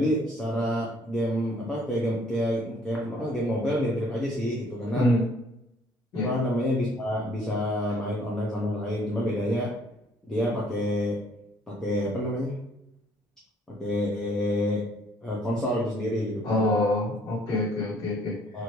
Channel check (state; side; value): normal; both; correlation 0.61